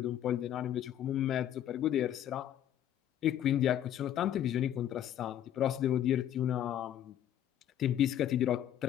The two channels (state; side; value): quieter; right; 11.0 dB